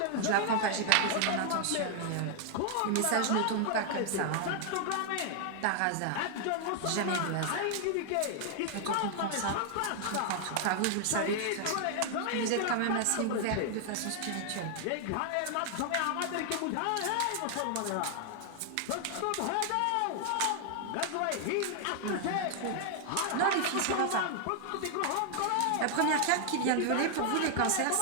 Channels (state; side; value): different; both; correlation 0.00